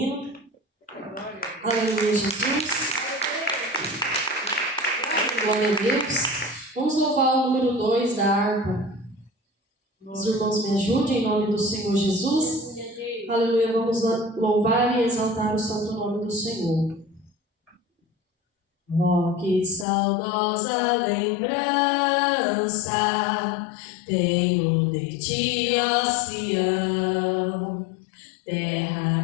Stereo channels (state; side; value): drops out; right; at 19.9 s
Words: Aleluia, Jesus. Glória a Deus. Vamos louvar o número 2 da harpa. Os irmãos me ajudem em nome do Senhor Jesus. Aleluia, vamos louvar e exaltar o santo nome do Senhor. Oh, que saudosa lembrança tenho de Ti, ó Sião,